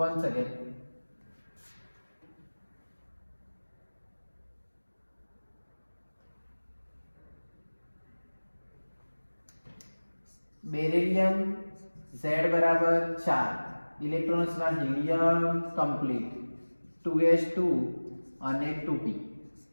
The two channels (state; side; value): inverted; both; correlation -1.00